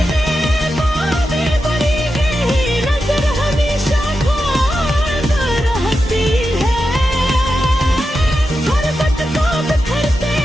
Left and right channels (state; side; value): normal; both; correlation 0.89